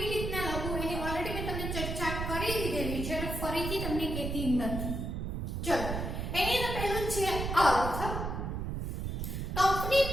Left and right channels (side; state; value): right; noise; rumble, 3 dB below the sound